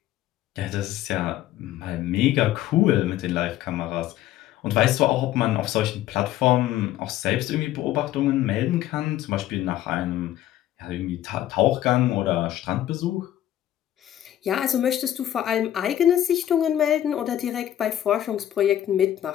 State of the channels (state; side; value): quieter; right; 12.6 dB